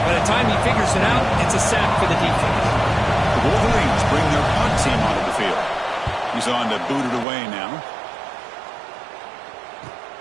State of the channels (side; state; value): left; drops out; at 7.2 s